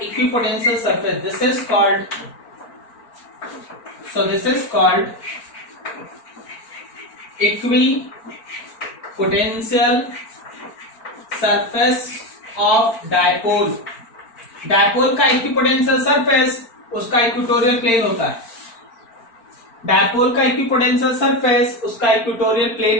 equipotential surface. This is called equipotential surface of dipole. Dipole का equipotential surface उसका equatorial plane होता है। Dipole का equipotential surface उसका equatorial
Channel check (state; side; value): late; right; 4.4 ms